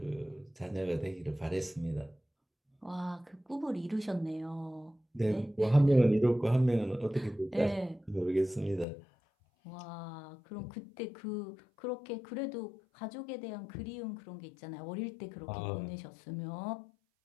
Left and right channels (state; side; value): drops out; right; at 8.8 s